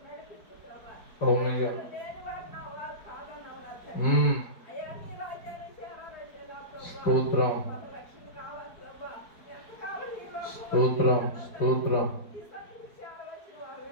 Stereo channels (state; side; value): late; right; 4.6 ms